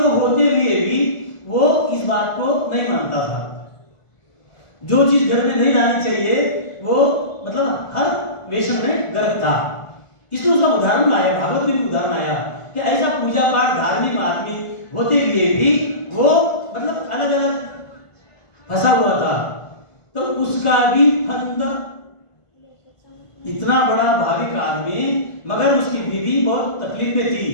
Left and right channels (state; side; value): late; right; 1.5 ms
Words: होते हुए भी वो इस बात को नहीं मानता था। जो चीज घर में नहीं लानी चाहिए वो मतलब हर वेशन में गर्भ था। इसलिए उसका उदाहरण लाया, भागवत में भी उदाहरण आया कि ऐसा पूजा पाठ धार्मिक आदमी होते हुए भी वो मतलब अलग अलग फंसा हुआ था, तो उसका भी फंद इतना बड़ा भाविक आदमी, मगर उसकी बीवी बहुत तकलीफ में थी